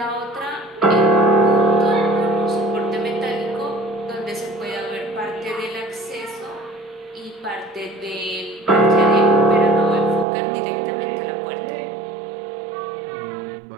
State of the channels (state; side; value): drops out; left; at 10.2 s